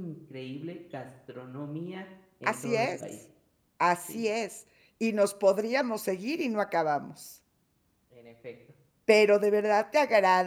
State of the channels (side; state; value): both; identical; correlation 1.00